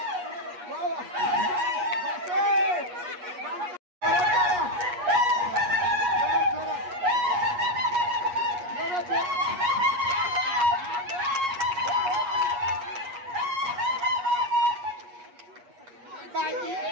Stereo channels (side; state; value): left; late; 8.3 ms